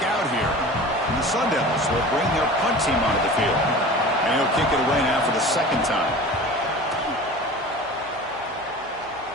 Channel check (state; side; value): noise; right; hum, 28 dB below the sound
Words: out here. And the Sun Devils will bring their punt team onto the field. And he'll kick it away now for the second time.